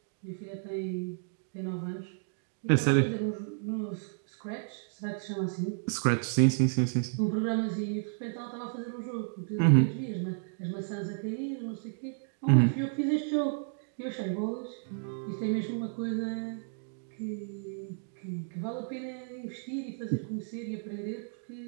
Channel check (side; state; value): left; silent; digital silence